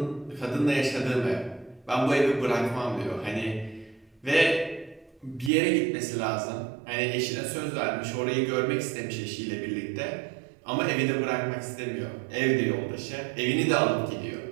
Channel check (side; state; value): left; drops out; at 5.5 s